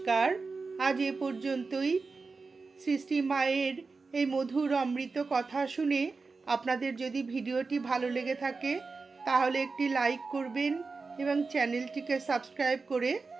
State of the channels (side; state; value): left; quieter; 4.2 dB